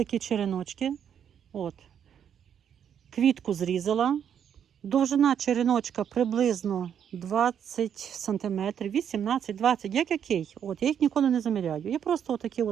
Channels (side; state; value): left; quieter; 8.6 dB